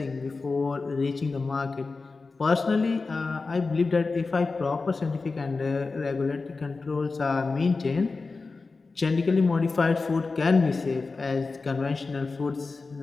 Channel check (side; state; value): right; quieter; 4.0 dB